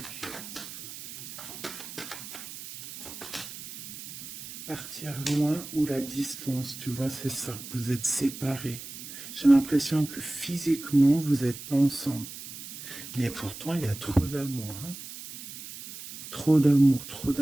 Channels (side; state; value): right; noise; hiss, 12 dB below the sound